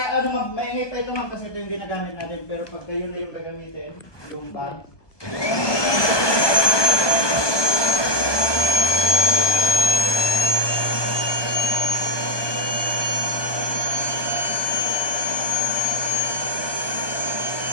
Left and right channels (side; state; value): right; late; 1.2 ms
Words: ano, ma'am, maingay pa ito, ma'am, kasi ito yung ginagamit natin. Pero pagka yun na yung gagamitin, yung bag.